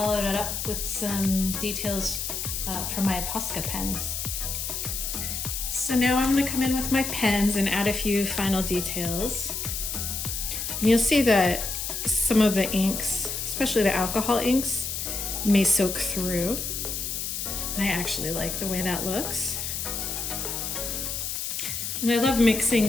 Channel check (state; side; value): noise; left; hiss, 3 dB below the sound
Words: it up with some details from my Posca pens. So now I'm going to come in with my pens and add a few final details. And you'll see that some of the inks, especially the alcohol inks, may soak through. And I actually like the way that looks. And I love